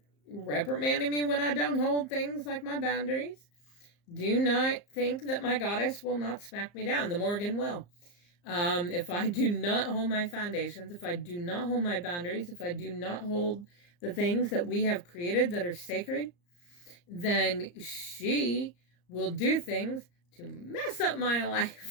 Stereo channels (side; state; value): right; late; 34 ms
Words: reprimanding me when I don't hold things like my boundaries. Do not think that my goddess will not smack me down. The Morgan will. If I do not hold my foundations, if I do not hold my boundaries, if I do not hold the things that we have created that are sacred, then she will do things to mess up my